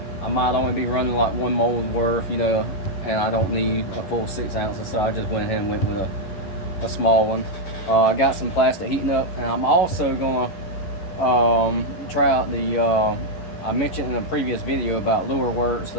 might only be running like one mold worth, and I don't need a full 6 ounces, so I just went ahead and went with a small one. I got some plastic heating up, and I'm also gonna try out the I mentioned in a previous video about lureworks.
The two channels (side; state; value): right; late; 11 ms